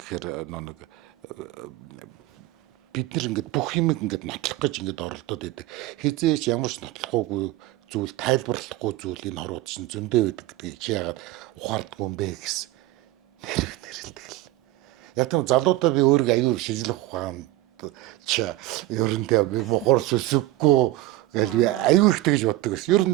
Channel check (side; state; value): left; quieter; 17.0 dB